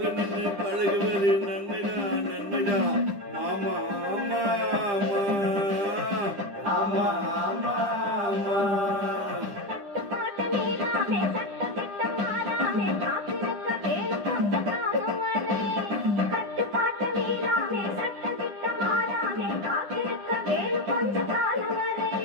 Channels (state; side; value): late; left; 10 ms